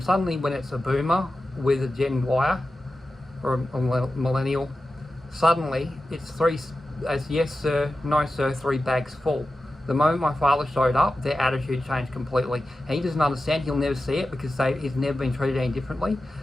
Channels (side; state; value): both; normal; correlation 0.93